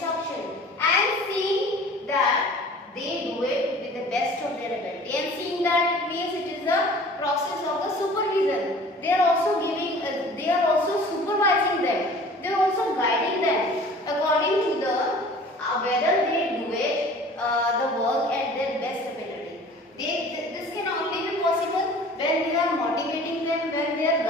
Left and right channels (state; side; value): normal; both; correlation 0.46